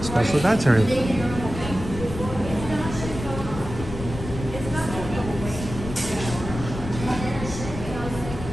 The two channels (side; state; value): left; noise; rumble, 8 dB below the sound